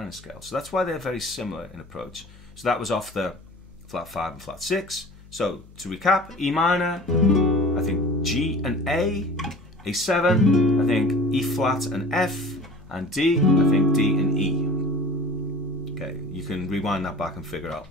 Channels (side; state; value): left; noise; hum, 22 dB below the sound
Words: scale. So that's why they're very similar in approach. So that was off the flat 5 and flat 6. So to recap, E minor, I think G and A, A7, I think E flat and F, and D, I think D and E. Okay, you can rewind that back and figure out